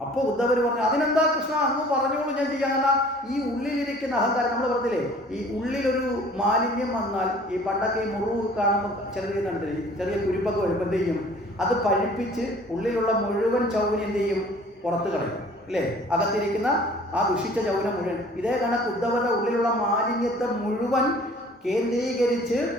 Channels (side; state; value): both; normal; correlation 0.51